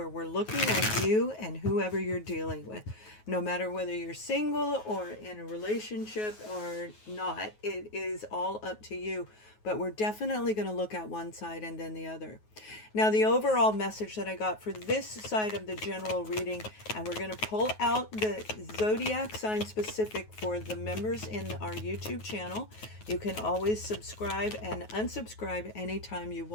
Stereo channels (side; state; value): right; late; 9.4 ms